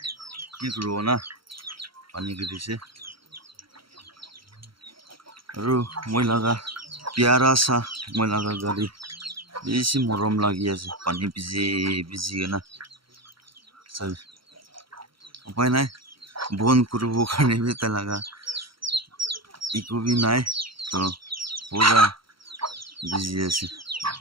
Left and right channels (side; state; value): left; late; 0.74 ms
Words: কি করব না পানি গিরিছে আৰু মই লাগা প্যারা সা মই লাগা গাড়ি বেশি মরম লাগি আছে পানি ভিজে ভিজি না সব উপায় নাই বন করব কারণে বেতা লাগা ইকো বি নাই তো পুরা ভিজি আছে